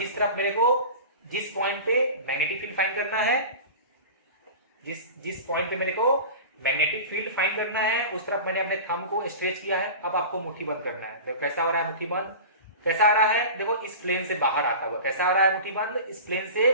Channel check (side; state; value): both; inverted; correlation -0.34